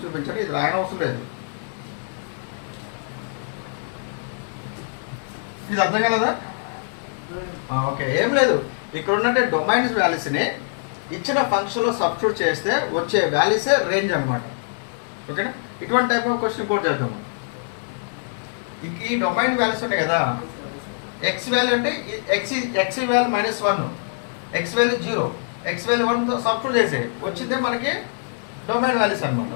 చూపించండి, ఇది రాయన అవసరం లేదు. ఇది అర్థం కలదా? ఓకే, ఏం లేదు, ఇక్కడ ఉన్నట్టే డొమైన్స్ వాల్యూస్ని ఇచ్చిన ఫంక్షన్లో సబ్స్టిట్యూట్ చేస్తే వచ్చే వాల్యూసే రేంజ్ అనమాట. ఓకేనా, ఇటువంటి టైప్ ఆఫ్ క్వశ్చన్ ఇంకోటి చేద్దాం. ఈ డొమైన్ వాల్యూస్ ఉన్నాయి కదా, ఎక్స్ వాల్యూ అంటే x value -1, x value 0, x value 1తో సబ్స్టిట్యూట్ చేసే వచ్చిందే మనకి డొమైన్ వాల్యూస్ అనమాట,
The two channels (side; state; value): right; silent; digital silence